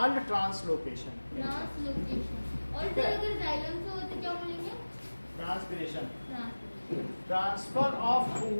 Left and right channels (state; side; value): inverted; both; correlation -1.00